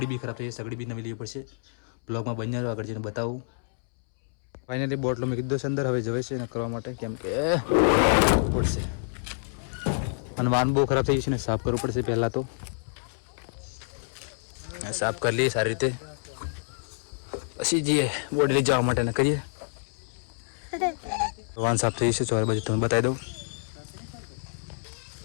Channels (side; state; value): right; silent; 60 dB below the other